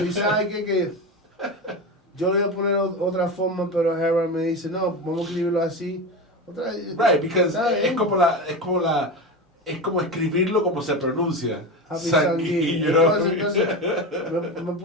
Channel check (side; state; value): both; normal; correlation 0.22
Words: Y sabe que yo le voy a poner otra forma, pero Harold me dice, no, vamos a escribirlo así. Right, because es como escribirlo como se pronuncia. Happy Sanghi, Sanghi. you know? Entonces me